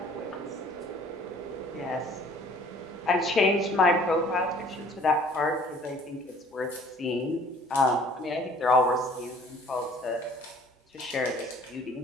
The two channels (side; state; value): both; normal; correlation 0.54